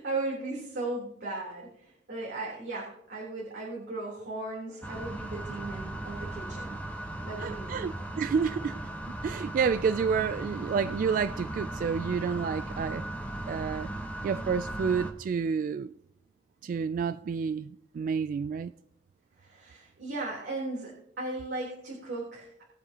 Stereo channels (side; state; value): left; quieter; 4.5 dB